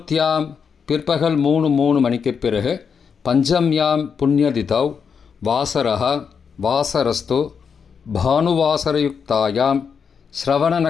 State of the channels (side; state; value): right; quieter; 6.4 dB